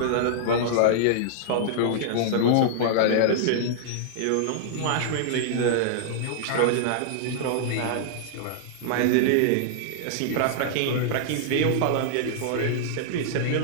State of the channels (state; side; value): different; both; correlation -0.01